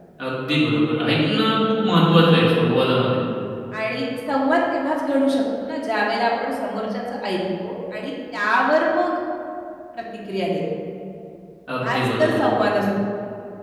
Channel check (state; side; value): identical; both; correlation 1.00